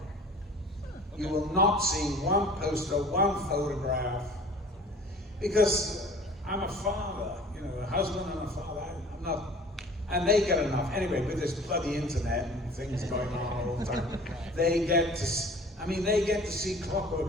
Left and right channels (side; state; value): both; normal; correlation 0.46